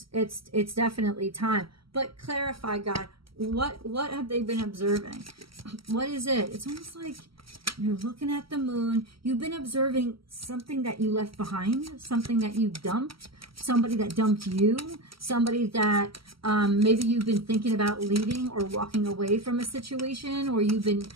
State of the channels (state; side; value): late; left; 0.75 ms